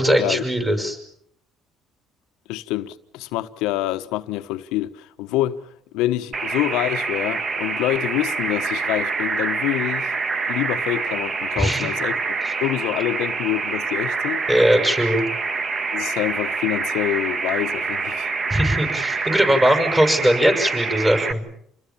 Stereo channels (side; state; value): both; normal; correlation 0.70